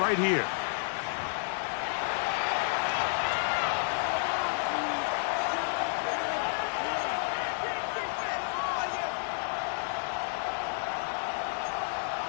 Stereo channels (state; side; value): silent; right; 57 dB below the other